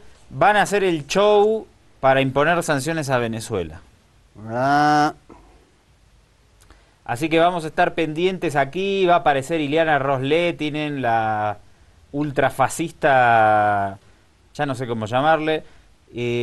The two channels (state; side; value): identical; both; correlation 1.00